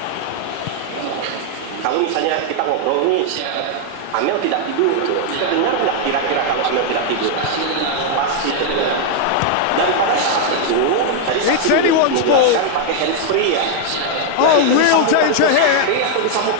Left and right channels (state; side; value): different; both; correlation 0.00